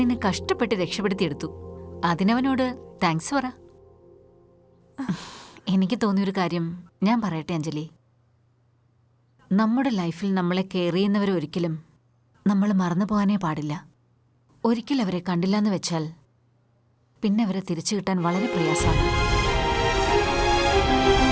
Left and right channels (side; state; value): both; identical; correlation 1.00